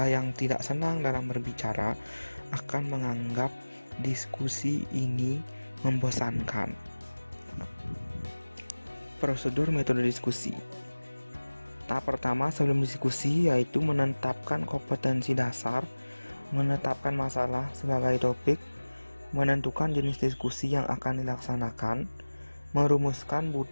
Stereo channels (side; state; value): both; inverted; correlation -1.00